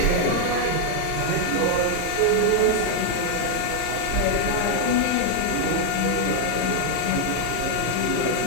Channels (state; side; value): different; both; correlation 0.00